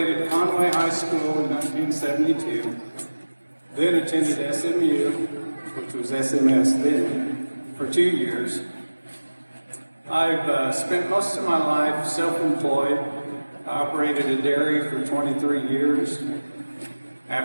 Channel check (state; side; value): inverted; both; correlation -1.00